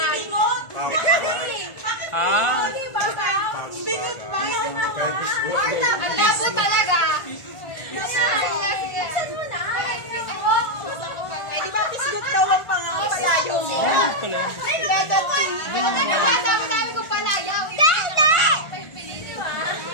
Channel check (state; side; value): late; right; 1.4 ms